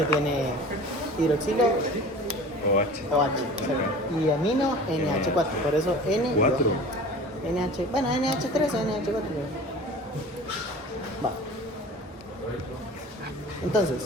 tiene hidroxilo OH. OH, exacto, y amino NH4, por eso N y ¿Cuatro? O. NH, bueno, NH3 o NH4. Va.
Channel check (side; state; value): both; normal; correlation 0.41